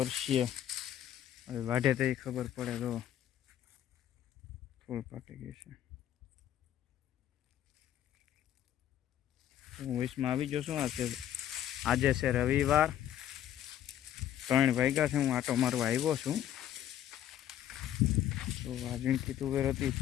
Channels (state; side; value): quieter; right; 11.3 dB